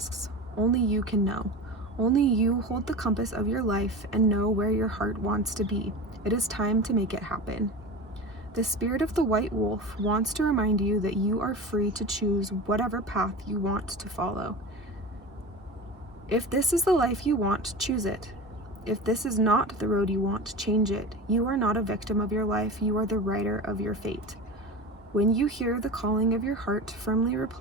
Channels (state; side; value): normal; both; correlation 0.31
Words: Only you can know. Only you hold the compass of your life and know where your heart wants to be. It is time to make it happen. The spirit of the white wolf wants to remind you that you are free to choose whatever path you want to follow. If this is the life you want, choose it. If this is not the road you want, change it. You are not a victim of your life, you are the writer of your fate. When you hear the calling of your heart, firmly